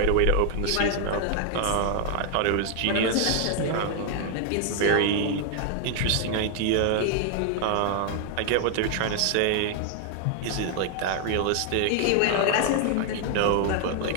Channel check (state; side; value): different; both; correlation 0.00